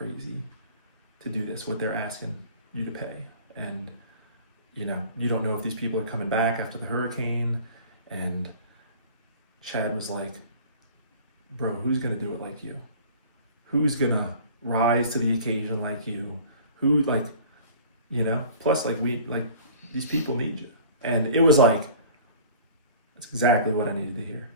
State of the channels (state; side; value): inverted; both; correlation -0.45